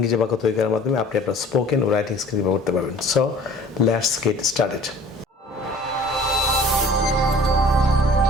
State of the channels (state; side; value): normal; both; correlation 0.49